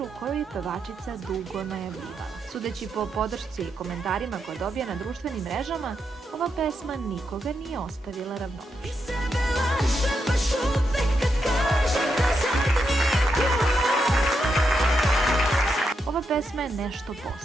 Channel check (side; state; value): both; normal; correlation 0.83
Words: koju je pevačica dugo najavljivala. Sudeći po podršci i komentarima koje dobija na društvenim mrežama, ova pesma nikoga nije ostavila ravnodušnim. Ova pesma je nešto